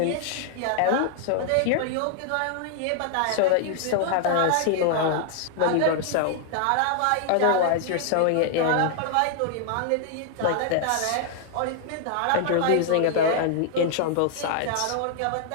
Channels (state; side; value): different; both; correlation 0.00